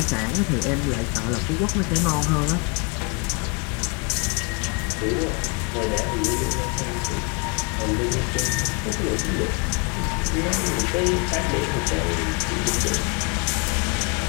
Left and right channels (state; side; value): quieter; right; 32.3 dB